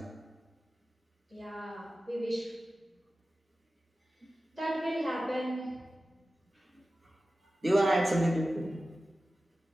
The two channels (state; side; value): normal; both; correlation 0.95